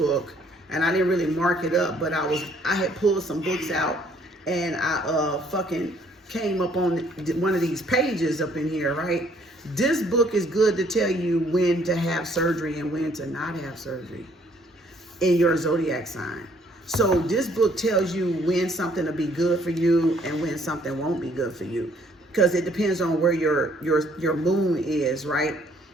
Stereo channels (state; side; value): normal; both; correlation 0.64